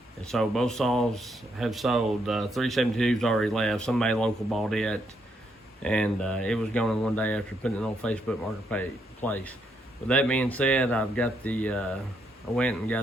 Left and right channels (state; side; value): normal; both; correlation 0.76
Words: And so both saws have sold. 372's already left. Somebody local bought it, and it was going one day after putting it on Facebook Marketplace. With that being said, I've got the I went and